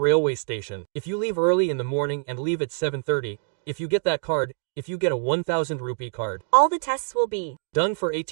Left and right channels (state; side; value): silent; left; digital silence